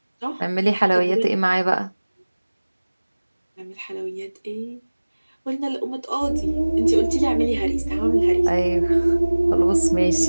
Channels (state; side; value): inverted; both; correlation -1.00